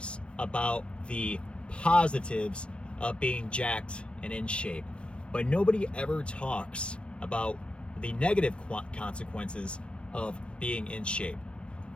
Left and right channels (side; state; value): right; late; 0.058 ms